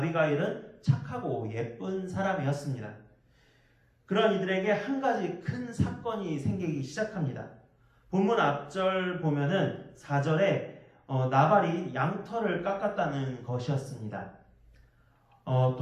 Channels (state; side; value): identical; both; correlation 1.00